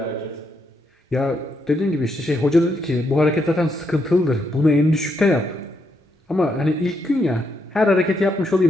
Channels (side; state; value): both; normal; correlation 0.78